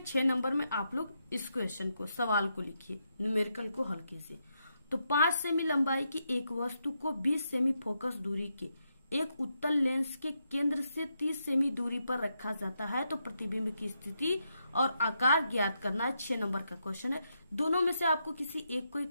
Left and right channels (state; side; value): inverted; both; correlation -0.82